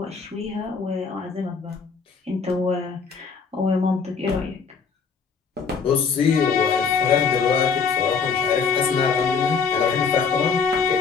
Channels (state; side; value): quieter; right; 5.6 dB